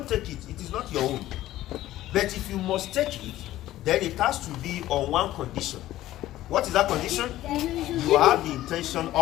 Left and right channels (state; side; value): quieter; right; 14.7 dB